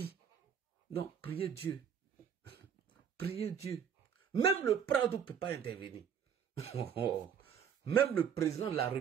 Donc, priez Dieu. Priez Dieu. Même le Prado ne peut pas intervenir. Même le président de la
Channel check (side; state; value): left; quieter; 7.8 dB